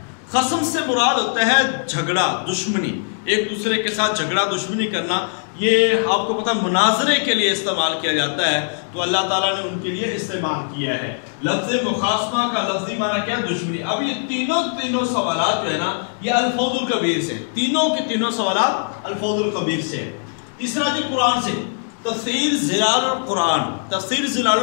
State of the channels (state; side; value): silent; right; digital silence